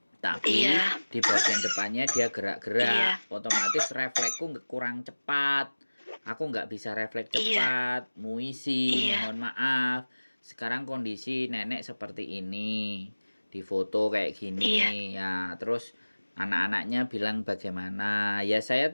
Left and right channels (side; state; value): both; inverted; correlation -1.00